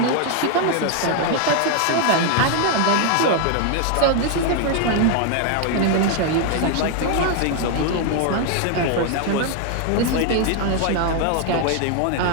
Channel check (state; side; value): different; both; correlation 0.00